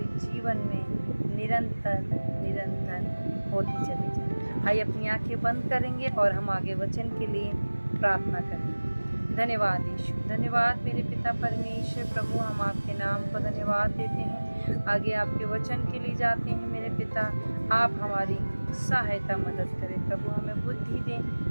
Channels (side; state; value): both; inverted; correlation -1.00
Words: जीवन में निरंतर निरंतर होती चली जाए। आइए अपनी आंखें बंद करेंगे और हम आगे वचन के लिए प्रार्थना करेंगे। धन्यवाद यीशु, धन्यवाद मेरे पिता परमेश्वर। प्रभु हम आपके नाम को धन्यवाद देते हैं, आगे आपके वचन के लिए जाते हैं। मेरे पिता आप हमारी सहायता मदद करें प्रभु, हमें बुद्धि दें,